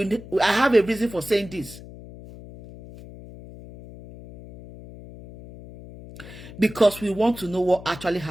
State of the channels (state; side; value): noise; left; hum, 16 dB below the sound